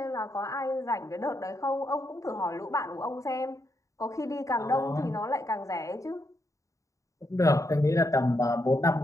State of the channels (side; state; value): right; late; 0.16 ms